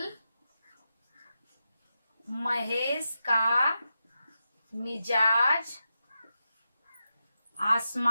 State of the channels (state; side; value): inverted; both; correlation -0.88